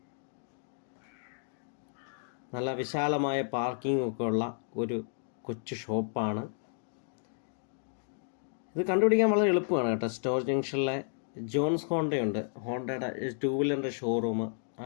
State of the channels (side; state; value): right; silent; digital silence